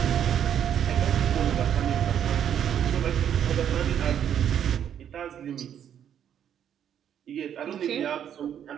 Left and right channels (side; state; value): left; quieter; 9.4 dB